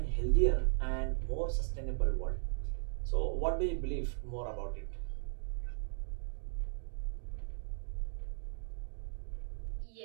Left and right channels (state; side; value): silent; left; digital silence